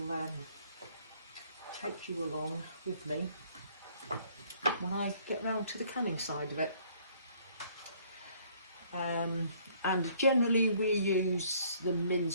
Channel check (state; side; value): inverted; both; correlation -0.61